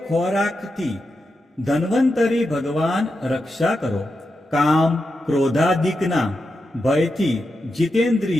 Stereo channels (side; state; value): both; normal; correlation 0.88